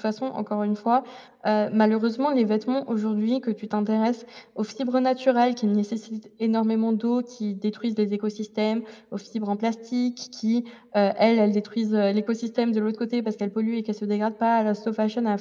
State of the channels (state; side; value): identical; both; correlation 1.00